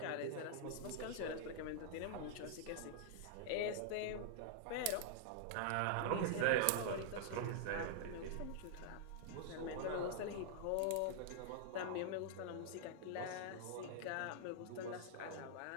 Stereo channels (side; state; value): both; different; correlation -0.01